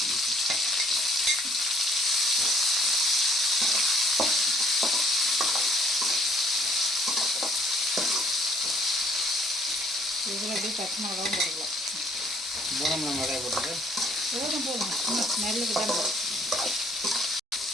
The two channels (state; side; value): normal; both; correlation 0.61